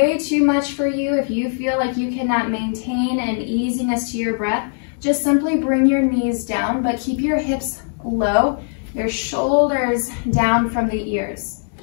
too much for you, if you feel like you cannot maintain an easiness to your breath, just simply bring your knees down, but keep your hips low, your shoulders down from the ears.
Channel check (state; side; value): silent; right; digital silence